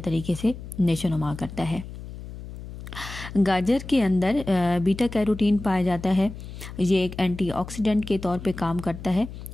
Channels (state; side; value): noise; left; hum, 12 dB below the sound